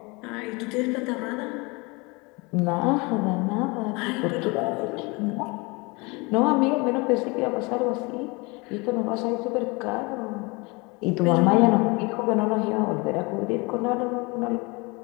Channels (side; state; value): right; quieter; 26.9 dB